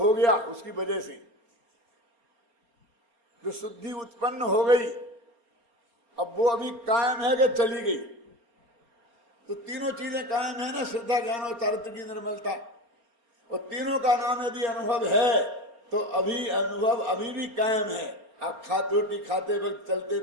गया, उसकी वजह से जो शुद्धि उत्पन्न हो गई, अब वो अभी कायम है कि चली गई? तो तीनों चीजें कायम है ना, श्रद्धा, ज्ञान और चारित्र की निर्मलता, और तीनों का नाम यदि अनुभव है तो अभी अनुभव अभी भी कायम है। आप रोटी खाते वक्त, चलते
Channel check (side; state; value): left; late; 4.3 ms